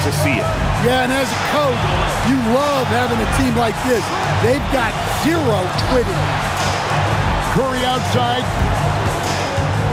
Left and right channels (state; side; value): identical; both; correlation 1.00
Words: see it. Yeah, and as a coach, you love having a team like this. They've got zero quitting. Curry outside.